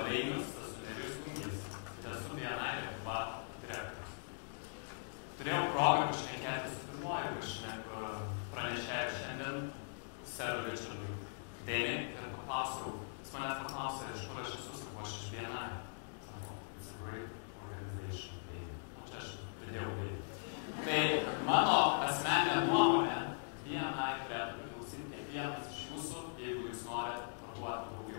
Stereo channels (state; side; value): silent; right; digital silence